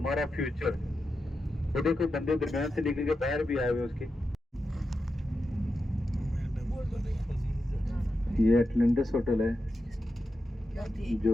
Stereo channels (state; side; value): normal; both; correlation 0.89